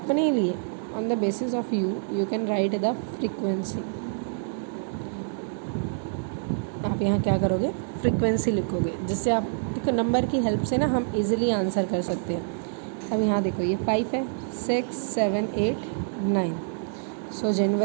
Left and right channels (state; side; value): silent; left; digital silence